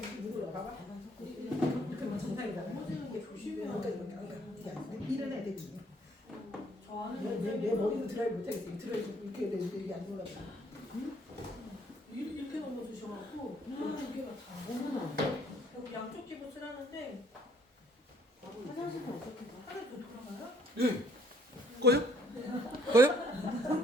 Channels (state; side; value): normal; both; correlation 0.64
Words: 이거 봐봐. 이렇게 뭐 정상이잖아. 넘어지는 게 조심해야 그러니까 돼. 이렇게 안 돼. 일어나야 되지. 저 아는 내 머리는 드라이브 못하겠어. 이 드라이브 이렇게 되는데 이게 안 올라가. 이렇게 넘어지셔갖고 두개가 다. 그리고 양쪽 집을 쓰라는데 화장실은 어떻게 가? 하나도 돌아가요? 예. 꺼요?